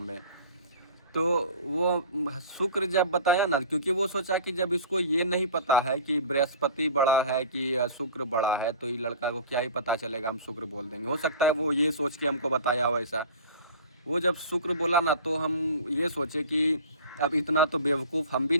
में। तो वो शुक्र जब बताया ना, क्योंकि वो सोचा कि जब इसको ये नहीं पता है कि बृहस्पति बड़ा है कि शुक्र बड़ा है, तो ये लड़का को क्या ही पता चलेगा, हम शुक्र बोल देंगे। हो सकता है वो ये सोच के हमको बताया हो ऐसा। वो जब शुक्र बोला ना, तो हम ये सोचे कि अब इतना तो बेवकूफ़ हम भी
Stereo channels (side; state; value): both; inverted; correlation -0.40